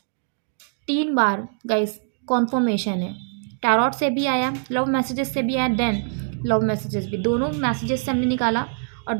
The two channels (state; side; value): silent; left; digital silence